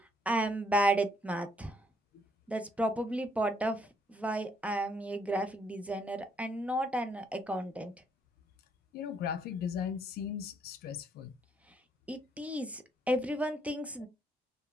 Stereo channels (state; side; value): normal; both; correlation 0.71